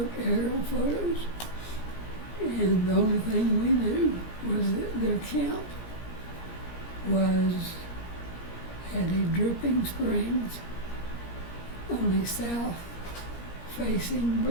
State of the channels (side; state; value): right; late; 17 ms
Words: aerial photos, and the only thing we knew was that their camp was at a Dripping Springs on a south-facing